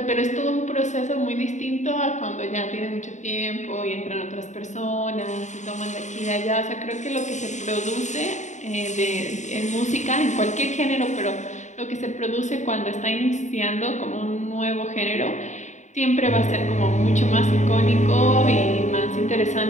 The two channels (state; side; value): late; right; 0.34 ms